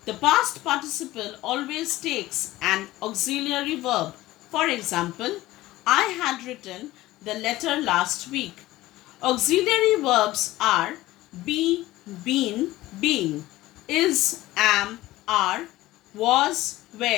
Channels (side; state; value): right; quieter; 17.1 dB